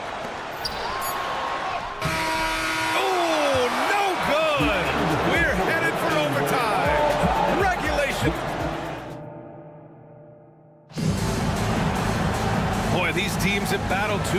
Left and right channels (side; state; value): both; identical; correlation 1.00